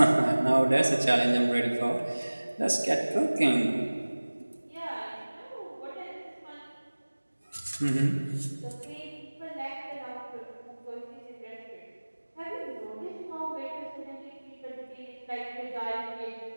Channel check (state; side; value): inverted; both; correlation -1.00